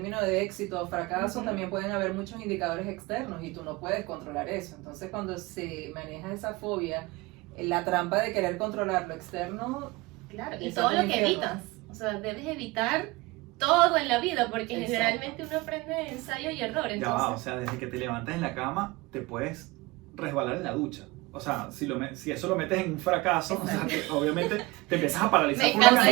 de éxito o fracaso, Ujú. también pueden haber muchos indicadores externos y tú no puedes controlar eso. Entonces cuando se maneja esa fobia, la trampa de querer controlar lo externo, Claro, y Eso todo es lo un que infierno. evitas. O sea, debes evitar todo en la vida, porque Exacto. generalmente uno aprende de ensayo y error. Ya va, o Entonces, sea, desde que te levantas en la cama, te puedes resbalar en la ducha. O sea, si eso lo metes en un fracaso, o sea, obviamente te empiezas a paralizar Me por una encanta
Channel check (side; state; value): left; quieter; 22.7 dB